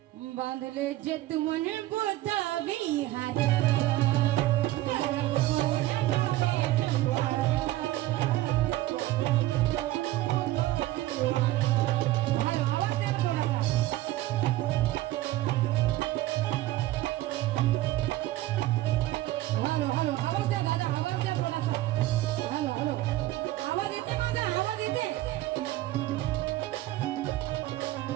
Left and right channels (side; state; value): left; quieter; 16.2 dB